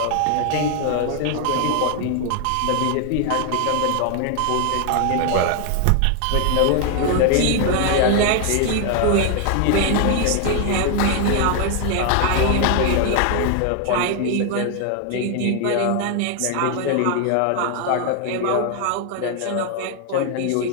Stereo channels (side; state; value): both; different; correlation 0.00